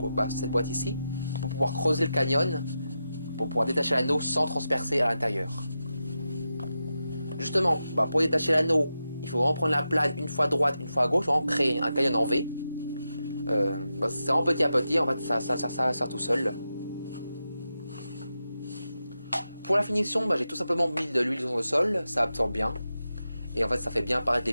cette boîte ici, pour pouvoir creuser le canyon, pour pouvoir détacher l'anneau sans transpercer à l'intérieur. Justement, pour détacher l'anneau, il faut vraiment prendre la plane une fois à droite, une fois à gauche, vraiment créer un canyon en V. C'est vraiment petit à petit, en fait ça va faire tout seul. Pour la finition, j'ai tout simplement mis de l'huile sur le sol, ça absorbe bien. Et en fait ça fait bien apparaître les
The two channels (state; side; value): inverted; both; correlation -0.90